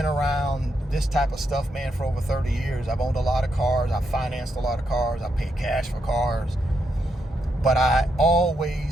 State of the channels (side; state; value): both; normal; correlation 0.81